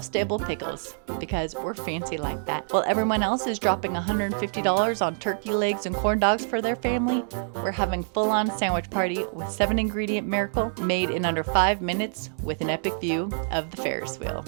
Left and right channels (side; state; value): left; silent; digital silence